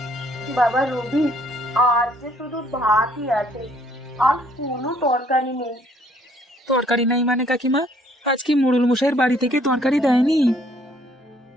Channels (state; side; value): normal; both; correlation 0.64